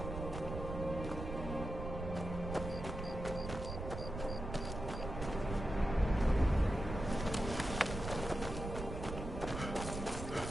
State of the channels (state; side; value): noise; right; rumble, 6 dB below the sound